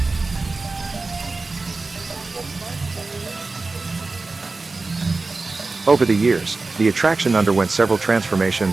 Over the years, the attraction underwent several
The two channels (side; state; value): left; quieter; 3.7 dB